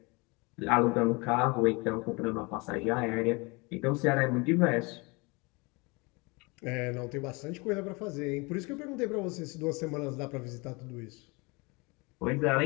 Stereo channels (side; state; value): right; quieter; 27.6 dB